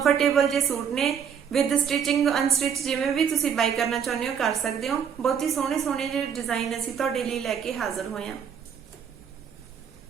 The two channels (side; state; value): left; quieter; 7.6 dB